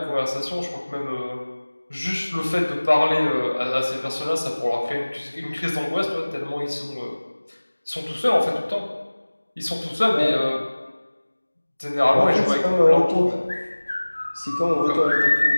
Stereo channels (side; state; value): both; inverted; correlation -1.00